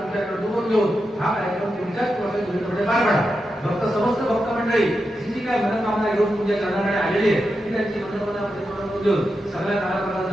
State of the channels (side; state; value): both; normal; correlation 0.88